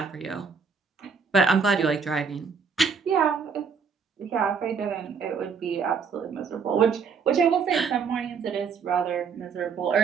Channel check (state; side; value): quieter; left; 5.8 dB